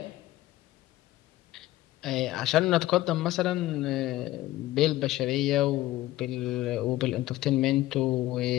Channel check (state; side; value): quieter; right; 16.1 dB